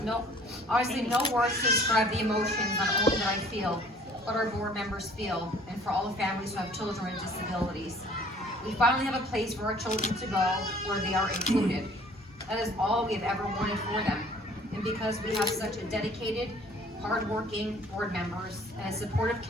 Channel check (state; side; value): normal; both; correlation 0.54